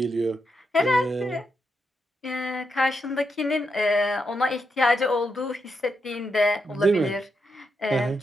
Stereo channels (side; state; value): both; normal; correlation 0.83